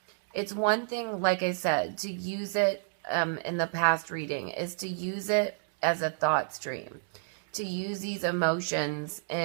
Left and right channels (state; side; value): silent; left; digital silence